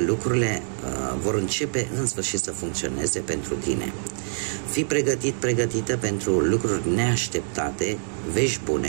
vor începe în sfârșit să funcționeze pentru tine. Fii pregătit, pregătită pentru lucruri neașteptate, vești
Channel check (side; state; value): left; silent; digital silence